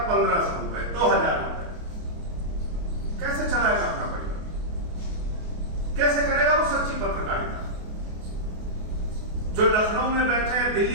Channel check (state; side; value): late; left; 28 ms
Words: 1500 रुपए, 2000 रुपए। कैसे चलाएगा अपना परिवार? कैसे करेगा वो सच्ची पत्रकारिता? जो लखनऊ में बैठे हैं,